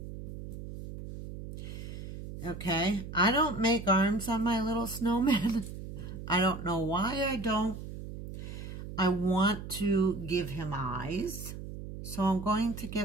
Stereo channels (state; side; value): noise; right; hum, 10 dB below the sound